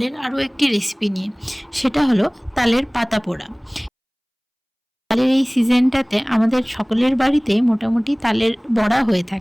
আরও একটি রেসিপি নিয়ে। সেটা হলো তালের পাতা পোড়া। তালের এই সিজনটাতে আমাদের সকলের বাড়িতে মোটামুটি তালের বড়া হয়ে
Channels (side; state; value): both; identical; correlation 1.00